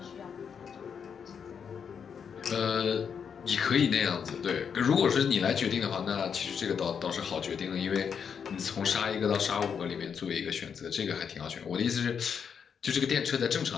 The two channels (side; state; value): right; quieter; 7.0 dB